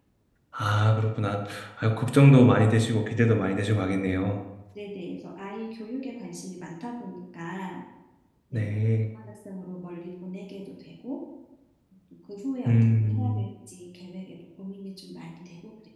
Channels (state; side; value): identical; both; correlation 1.00